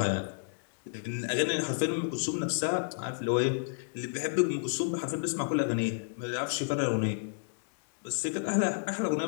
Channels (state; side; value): silent; right; digital silence